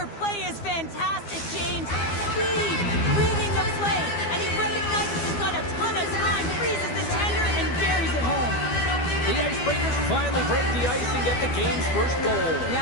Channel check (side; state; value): right; late; 12 ms